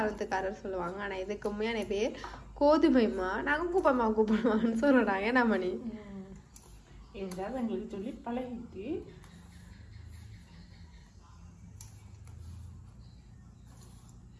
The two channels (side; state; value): both; identical; correlation 1.00